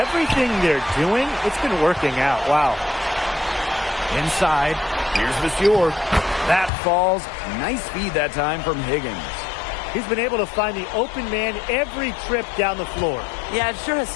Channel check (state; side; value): drops out; right; at 6.7 s